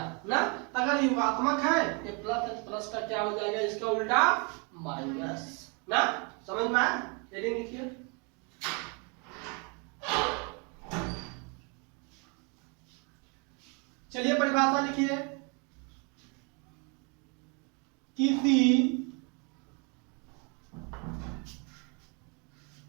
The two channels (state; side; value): quieter; left; 33.5 dB